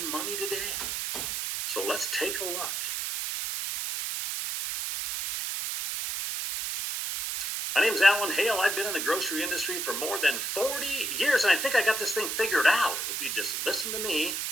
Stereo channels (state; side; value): noise; right; hiss, 2 dB below the sound